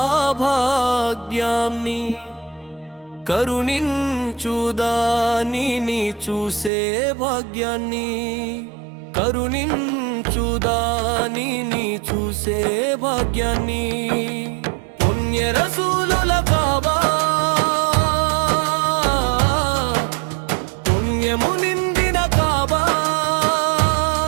భాగ్యాన్ని కరుణించు దానిని చూసే భాగ్యాన్ని కరుణించు దానిని చూసే భాగ్యాన్ని పుణ్య రసూలుల కాబా పుణ్యము నిండిన కాబా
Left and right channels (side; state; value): left; drops out; at 6.7 s